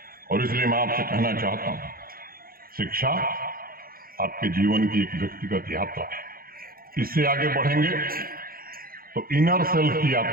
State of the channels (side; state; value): left; late; 0.42 ms